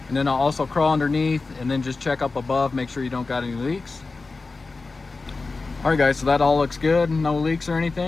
and then I'll also crawl underneath and then just check up above, make sure you don't got any leaks. All right guys, so that all looks good, no leaks or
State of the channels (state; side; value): quieter; right; 3.8 dB